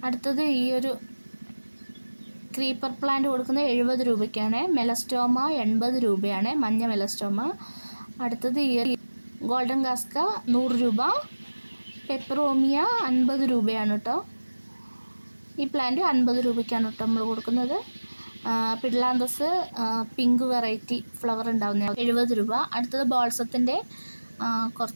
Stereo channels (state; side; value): inverted; both; correlation -1.00